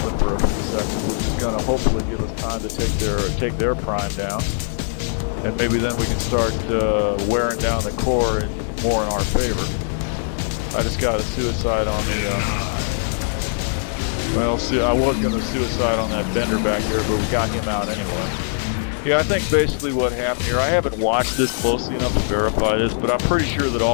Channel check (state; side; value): silent; right; 63 dB below the other